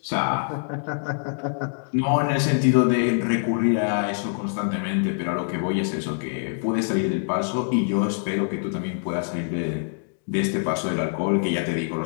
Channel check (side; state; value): right; silent; digital silence